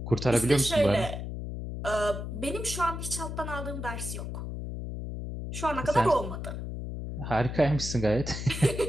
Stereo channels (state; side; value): noise; left; hum, 6 dB below the sound